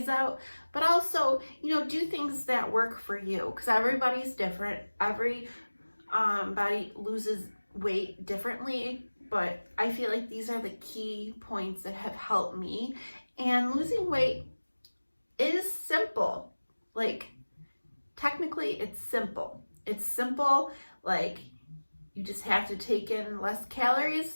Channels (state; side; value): inverted; both; correlation -1.00